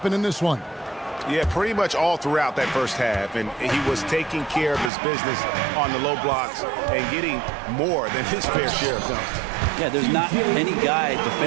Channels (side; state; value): left; drops out; at 4.9 s